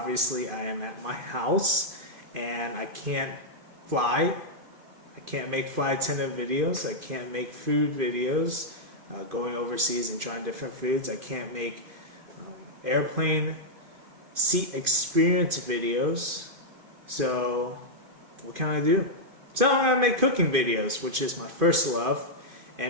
I am at my house and I can't fly. I can't make flight attendant videos. I can't make food videos, going overseas and trying different foods. I can't make airplane seat experience videos. So what can I do? So I'm gonna make cooking videos, which is my first love.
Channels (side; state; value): left; late; 2.5 ms